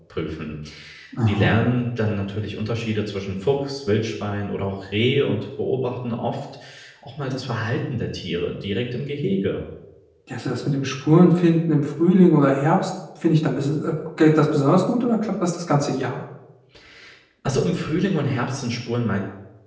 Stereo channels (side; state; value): both; identical; correlation 1.00